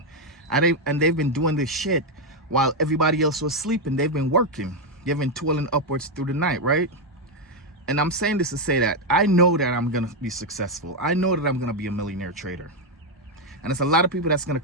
And they've been doing this shit while everybody else was sleeping. They've been working. They've been toiling upwards through the night, right? And I'm saying this to say that I know that I'm going to be successful. I know that I'm going to be a millionaire trader. And there's a lot of people that's going to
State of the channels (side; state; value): both; normal; correlation 0.03